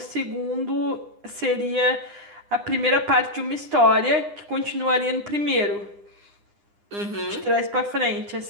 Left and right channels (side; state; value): left; late; 9.9 ms